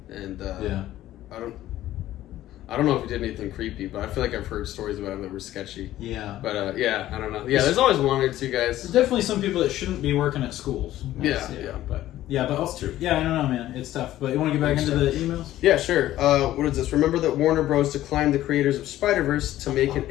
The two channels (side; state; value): right; quieter; 14.0 dB